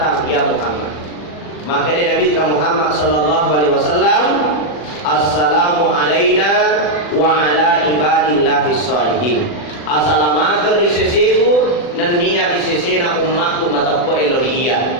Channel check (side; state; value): right; late; 40 ms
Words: ya Muhammad. Maka Nabi Muhammad sallallahu alaihi wasallam, assalamu alaina wa ala ibadillahis salihin. Assalamualaikum risesiku dan niat risesena umatku matapko eloria.